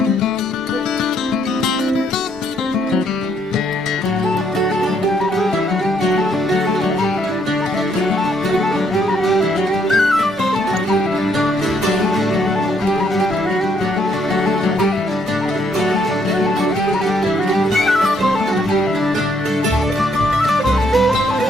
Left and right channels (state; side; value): normal; both; correlation 0.71